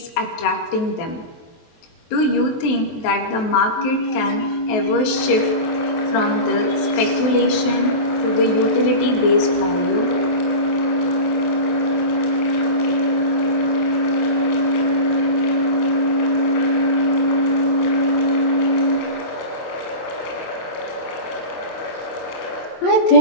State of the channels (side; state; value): right; late; 23 ms